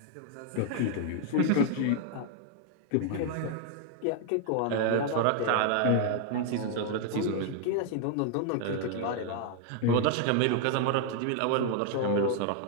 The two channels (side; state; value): both; different; correlation 0.00